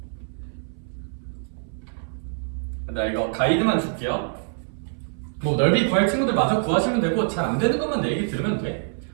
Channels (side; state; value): left; silent; 62 dB below the other